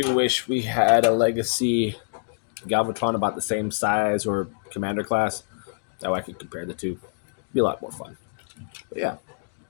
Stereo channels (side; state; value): right; silent; digital silence